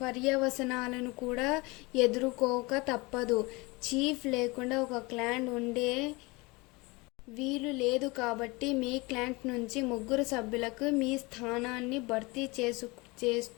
కూడా ఎదుర్కోక తప్పదు. చీఫ్ లేకుండా ఒక క్లాన్ ఉండే వీలు లేదు కాబట్టి మీ క్లాంట్ నుంచి 3 సభ్యులకు మీ స్థానాన్ని భర్తీ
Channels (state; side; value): quieter; right; 25.1 dB